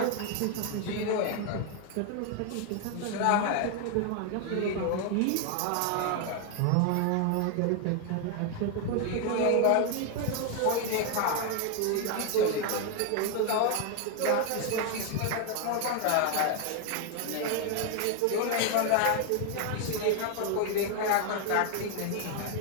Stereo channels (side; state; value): both; different; correlation 0.01